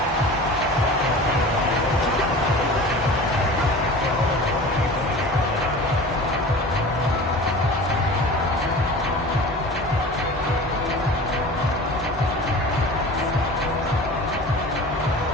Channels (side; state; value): both; normal; correlation 0.38